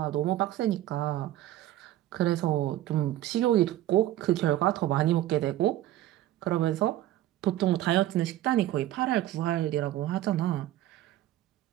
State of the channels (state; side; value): quieter; left; 13.9 dB